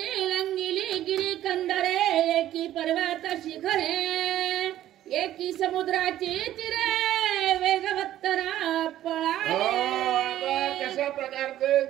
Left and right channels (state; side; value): quieter; left; 12.9 dB